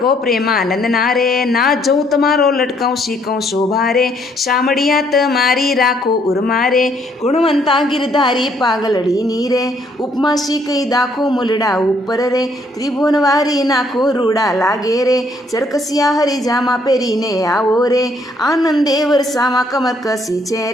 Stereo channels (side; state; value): both; normal; correlation 0.68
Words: પ્રેમાનંદ ના રે, ના જોઉં તમારો લટકાઉં શીખઉં શોભા રે, શામળિયા તમારી રાખો ઉર્મા રે, ગુણવંતા ગિરધારી પાગલડીની રે, ઉપમા શીખઈ દાખો મુલડા ઉપર રે, ત્રિભુવનવારી નાખો રૂડા લાગે રે, ચરકસિયા હરિજામાં પહેરીને આવો રે, આનંદે વરસામાં કમર કસી છે